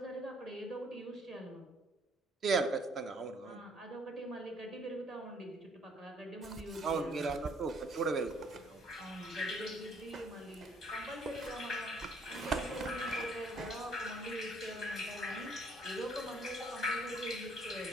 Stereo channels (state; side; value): normal; both; correlation 0.63